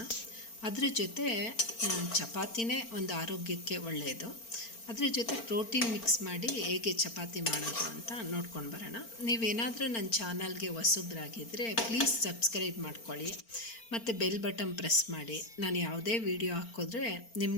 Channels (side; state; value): right; late; 4.4 ms